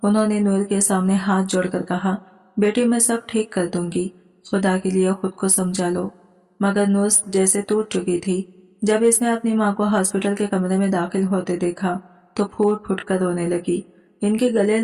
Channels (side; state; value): both; identical; correlation 1.00